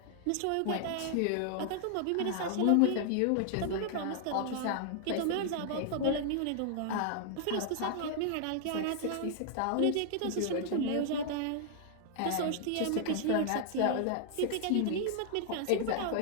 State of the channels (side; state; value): both; different; correlation 0.00